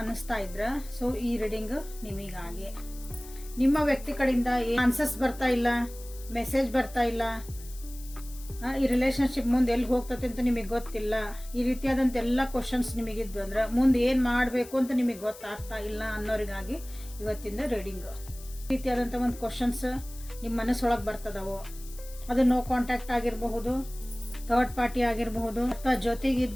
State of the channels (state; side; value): noise; left; hiss, 18 dB below the sound